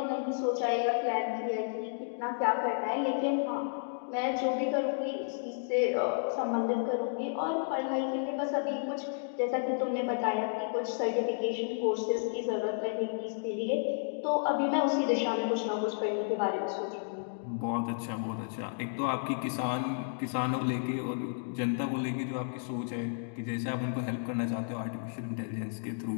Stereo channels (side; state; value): right; silent; digital silence